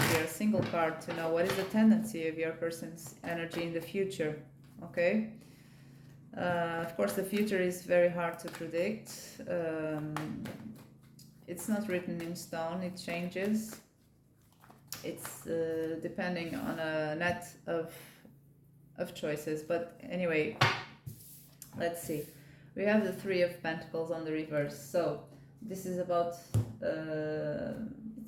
here, a single card, to know what is the tendency of your person's energy in the future. Okay. Of course, the future is very hard to predict. It's not written in stone. It changes. It's depending on a net of choices. But anyway, let's see. We have the 3 of Pentacles on the reverse. So this is about,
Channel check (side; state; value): both; identical; correlation 1.00